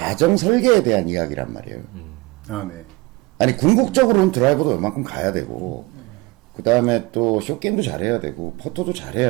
설계에 대한 이야기란 말이에요. 아, 네. 아니 궁극적으로는 드라이버도 웬만큼 가야 되고, 그 다음에 또 쇼게임도 잘해야 되고 퍼터도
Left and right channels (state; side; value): quieter; left; 23.1 dB